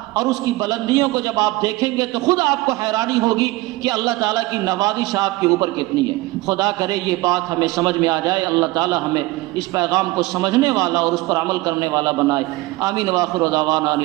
اور اس کی بلندیوں کو جب آپ دیکھیں گے تو خود آپ کو حیرانی ہوگی کہ اللہ تعالیٰ کی نوازش آپ کے اوپر کتنی ہے۔ خدا کرے یہ بات ہمیں سمجھ میں آ جائے، اللہ تعالیٰ ہمیں اس پیغام کو سمجھنے والا اور اس پر عمل کرنے والا بنائے۔ آمین۔ وآخر دعوانا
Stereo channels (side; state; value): left; quieter; 20.5 dB